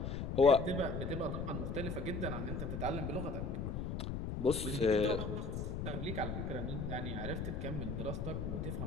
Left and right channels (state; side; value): noise; left; rumble, 3 dB below the sound